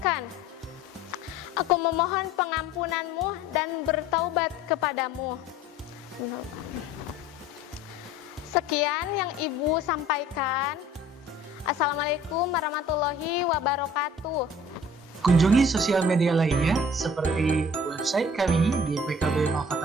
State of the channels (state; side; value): normal; both; correlation 0.50